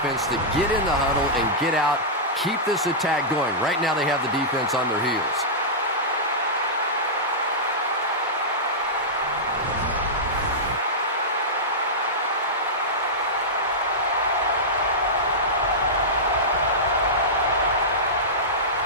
to get in the huddle and get out, keep this attack going. Right now they have the defense on their heels.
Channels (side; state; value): both; normal; correlation -0.13